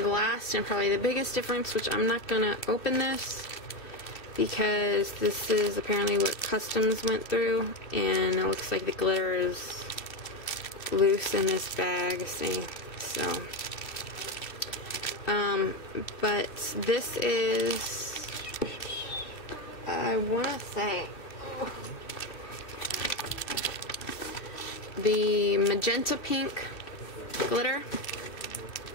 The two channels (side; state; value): right; late; 2.7 ms